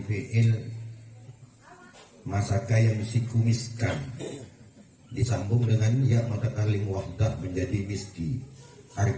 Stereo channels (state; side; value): identical; both; correlation 1.00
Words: fi'il masaka yang misikumiskan, disambung dengan ya mutakalim wahdah menjadi miski,